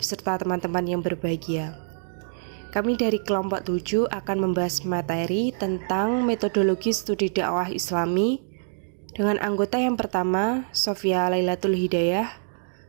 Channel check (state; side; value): silent; left; digital silence